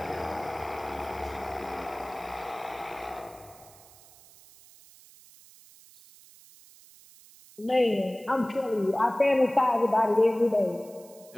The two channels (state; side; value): noise; right; hiss, 23 dB below the sound